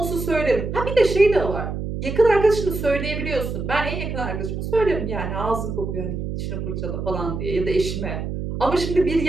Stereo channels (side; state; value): right; noise; hum, 5 dB below the sound